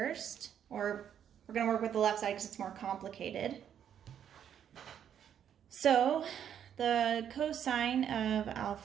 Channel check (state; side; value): quieter; left; 9.2 dB